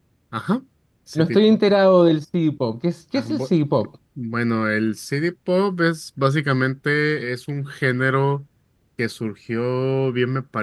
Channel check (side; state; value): both; identical; correlation 1.00